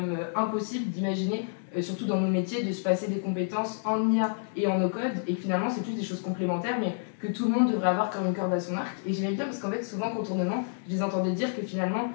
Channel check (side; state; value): right; silent; digital silence